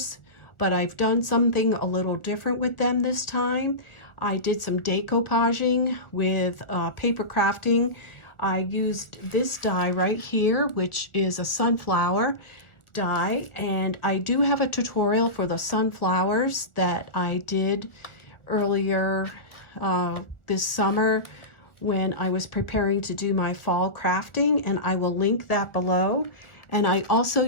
but I've done something a little different with them this time. I did some decoupaging with paper crafting. I used this die right here, which is a sunflower die, and I do have a tutorial for the sunflowers that I did earlier this summer when I was preparing to do my fall crafting, and I will link that below. And I also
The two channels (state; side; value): late; right; 1.4 ms